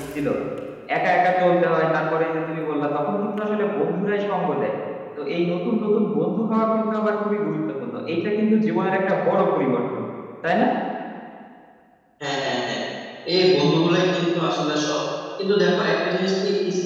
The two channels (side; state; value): both; identical; correlation 1.00